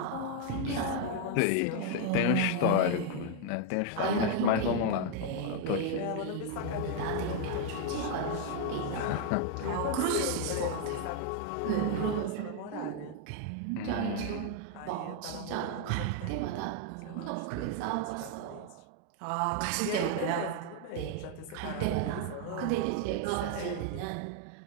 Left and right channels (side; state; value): both; different; correlation 0.00